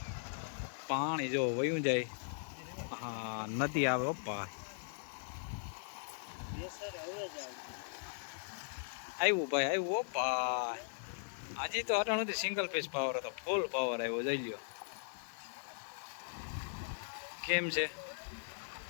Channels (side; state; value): right; silent; digital silence